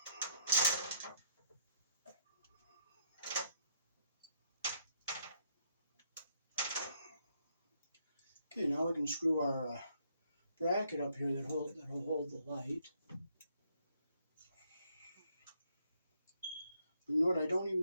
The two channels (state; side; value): inverted; both; correlation -0.71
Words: Okay, now we can screw our bracket up here that'll hold the light. You know what? I don't